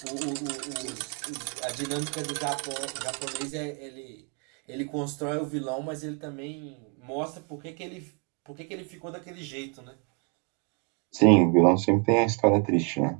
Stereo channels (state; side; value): quieter; left; 35.4 dB